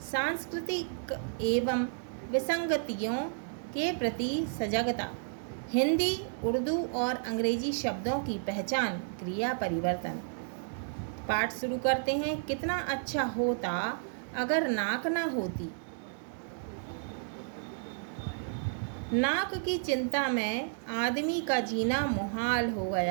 सांस्कृतिक एवं विसंगतियों के प्रति सजगता, हिंदी, उर्दू और अंग्रेजी शब्दों की पहचान, क्रिया परिवर्तन। पाठ शुरू करते हैं। कितना अच्छा होता अगर नाक ना होती। नाक की चिंता में आदमी का जीना मुहाल हो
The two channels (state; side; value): silent; left; digital silence